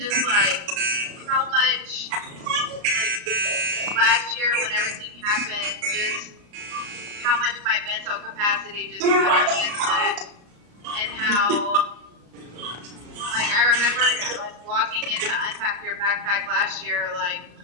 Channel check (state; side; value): late; left; 34 ms